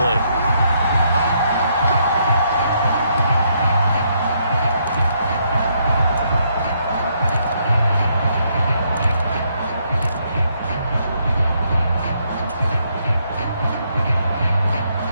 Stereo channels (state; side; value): inverted; both; correlation -0.74